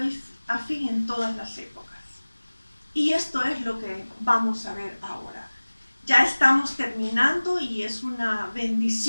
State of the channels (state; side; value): inverted; both; correlation -1.00